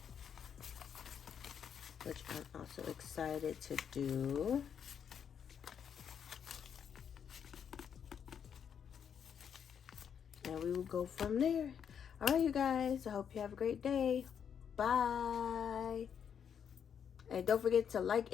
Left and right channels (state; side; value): quieter; right; 7.9 dB